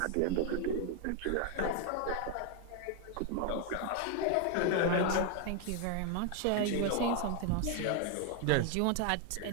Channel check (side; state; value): both; different; correlation 0.00